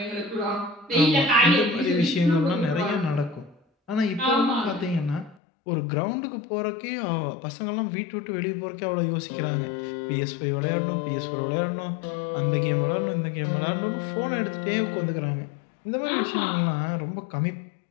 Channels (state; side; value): drops out; right; at 5.4 s